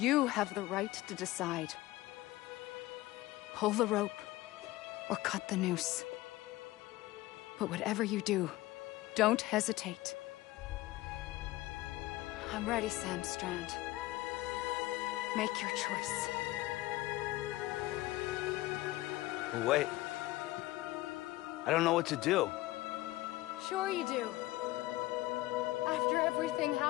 have the right to decide. Pull the rope, or cut the noose. But whatever you do, don't hesitate. I'm ready, Sam Strand. Make your choice. Wait. I don't know what to do. Sure you do. After everything,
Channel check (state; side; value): quieter; right; 17.9 dB